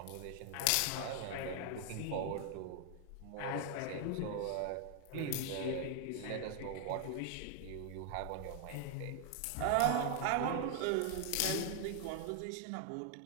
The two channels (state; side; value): different; both; correlation 0.00